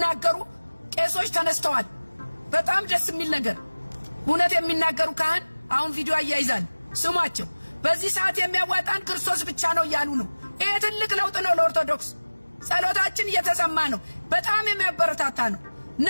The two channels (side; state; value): both; inverted; correlation -1.00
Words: ቄሶች ተነስተዋል። በጣም ደስ የሚል ነገር እውነት የሚናገሩ ካህን አሁን ቪዲዮ አያይዛል። ስሟቸው። በዚህ ሰዓት የሚያዋጣን ክርስቶስ ብቻ ነው እያሉ ነው። ይሄ ትልቅ ለውጥ ነው ለኦርቶዶክስ። ጸሎታችን እየተሰማ ነው። በጣም የሚያበረታታ ነው።